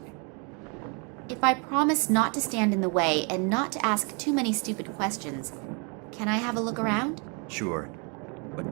If I promise not to stand in the way and not to ask too many stupid questions, can I have a look around? Sure, but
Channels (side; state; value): left; quieter; 34.8 dB